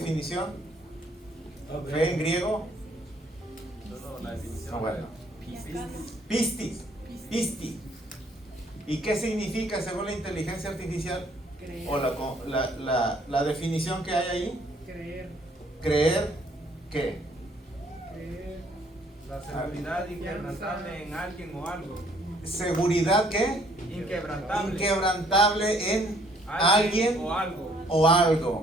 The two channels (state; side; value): normal; both; correlation 0.63